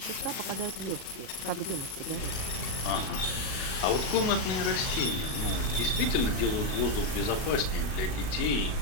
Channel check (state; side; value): late; right; 37 ms